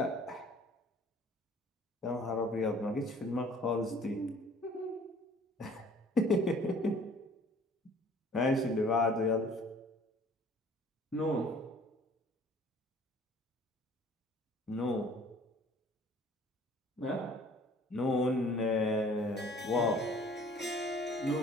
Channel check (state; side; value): normal; both; correlation 0.53